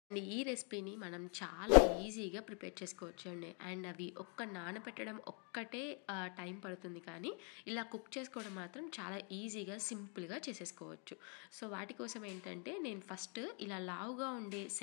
అండ్ ఈ రెసిపీని మనం చాలా ఈజీగా ప్రిపేర్ చేసుకోవచ్చు అండి. అండ్ అవి నానబెట్టడం ఒక్కటే టైం పడుతుంది, కానీ ఇలా కుక్ చేసుకోవడం మాత్రం చాలా ఈజీగా సింపుల్గా చేసేసుకోవచ్చు. సో వాటి కోసం ఏంటంటే, నేను ఫస్ట్ ఇలా లావుగా ఉండే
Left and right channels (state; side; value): quieter; right; 38.2 dB